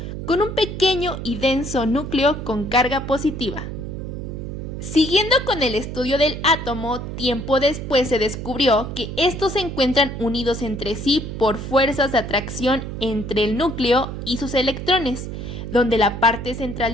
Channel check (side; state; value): right; noise; hum, 7 dB below the sound